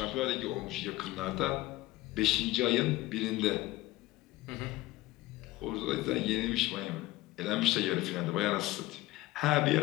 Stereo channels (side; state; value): right; quieter; 18.0 dB